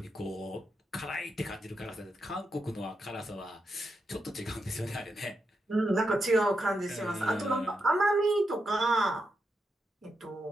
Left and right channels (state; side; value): normal; both; correlation 0.85